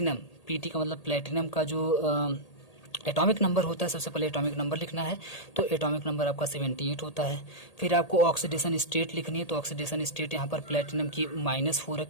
PT का मतलब प्लेटिनम का जो एटॉमिक नंबर होता है, सबसे पहले एटॉमिक नंबर लिखना है, तो एटॉमिक नंबर आपका 78 होता है। फिर आपको ऑक्सीडेशन स्टेट लिखनी है, तो ऑक्सीडेशन स्टेट यहाँ पर प्लेटिनम की -4 है,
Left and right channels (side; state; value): right; late; 1.8 ms